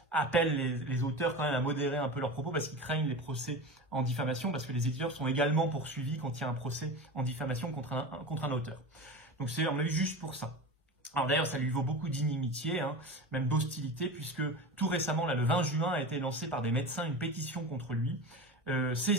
appellent les auteurs quand même à modérer un peu leurs propos parce qu'ils craignent les procès en diffamation, parce que les éditeurs sont également poursuivis quand il y a un procès en diffamation contre un auteur. Donc c'est, on a eu juste pour ça. Alors d'ailleurs, ça lui vaut beaucoup d'inimitié, hein, même d'hostilité, puisque tout récemment, là, le 20 juin, a été lancée par des médecins une pétition contre lui,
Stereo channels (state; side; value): normal; both; correlation 0.28